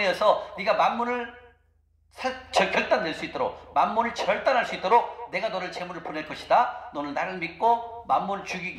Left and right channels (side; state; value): both; identical; correlation 1.00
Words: 네가 만몬을 결단낼 수 있도록, 만몬을 절단할 수 있도록 내가 너를 재물을 보낼 것이다. 너는 나를 믿고 만몬을